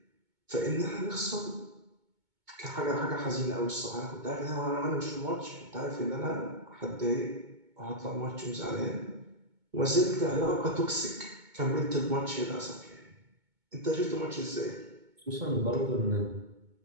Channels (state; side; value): late; left; 2.2 ms